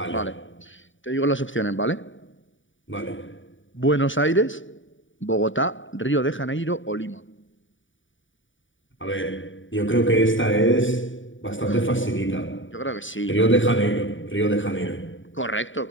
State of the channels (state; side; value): late; right; 0.56 ms